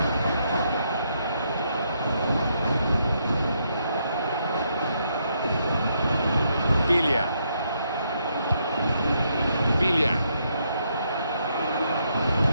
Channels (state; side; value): inverted; both; correlation -0.76